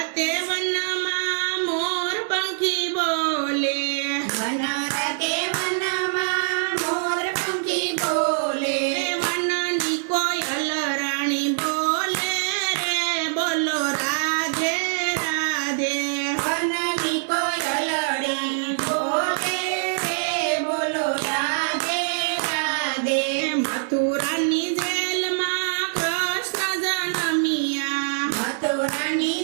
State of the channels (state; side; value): silent; left; digital silence